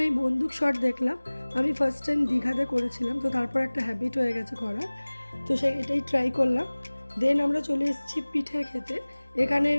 বন্দুক শট দেখলাম। আমি ফার্স্ট টাইম দীঘাতে করেছিলাম, তো তারপর একটা হ্যাবিট হয়ে গেছে করার। তো এটাই ট্রাই করলাম। দেন আমরা চলে এসেছি পিঠে খেতে। এখানে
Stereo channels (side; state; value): both; inverted; correlation -1.00